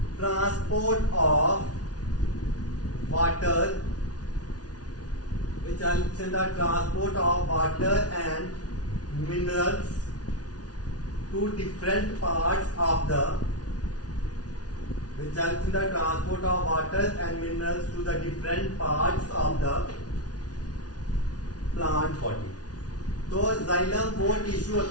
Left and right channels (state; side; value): late; right; 0.69 ms